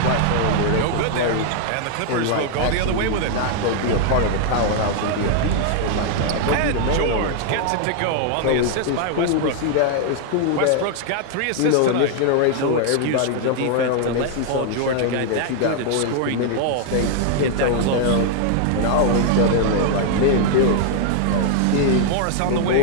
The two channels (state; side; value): different; both; correlation 0.00